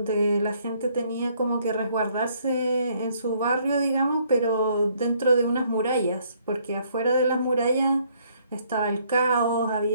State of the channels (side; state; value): both; inverted; correlation -0.66